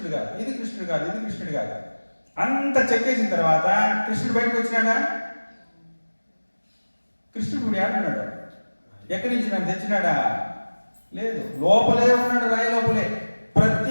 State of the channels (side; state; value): both; inverted; correlation -1.00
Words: కాదు, ఇది కృష్ణుడు కాదు, ఇది కృష్ణుడు కాదు. అంత చెక్కేసిన తర్వాత కృష్ణుడు బయటకు వచ్చినాడా? కృష్ణుడు ఇప్పుడు ఏడున్నాడు? ఎక్కడి నుంచి నన్ను తెచ్చినాడా? లేదు, లోపలే ఉన్నాడు, రాయి లోపలే.